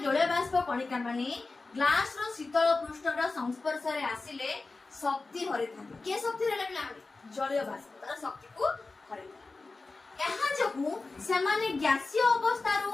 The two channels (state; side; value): quieter; right; 3.7 dB